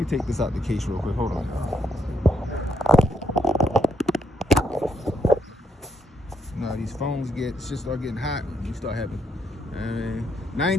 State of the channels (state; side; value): normal; both; correlation 0.75